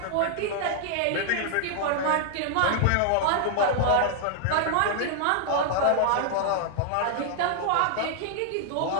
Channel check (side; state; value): both; different; correlation 0.00